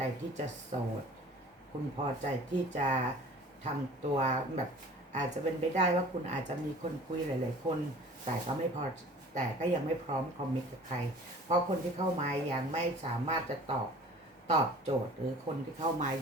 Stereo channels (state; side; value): normal; both; correlation 0.46